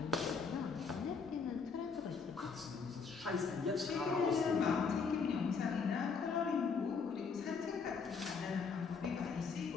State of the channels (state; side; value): quieter; right; 5.3 dB